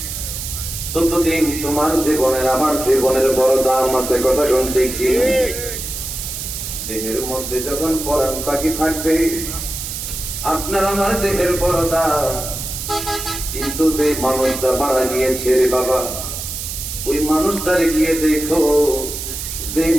ততদিন তোমার জীবনের আমার জীবনের বড় দাম আছে। কথা শুনতে কি? দেহের মধ্যে যখন পরাণ পাখি থাকবে আপনার আমার দেহের বড় দাম। কিন্তু যে মানুষটা মারা গিয়েছে রে বাবা, ওই মানুষটারে গিয়ে দেখো, যে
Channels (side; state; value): right; noise; hiss, 6 dB below the sound